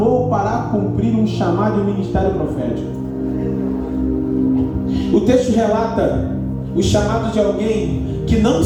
para cumprir um chamado e um ministério profético. O texto relata o chamado de alguém que não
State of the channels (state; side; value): identical; both; correlation 1.00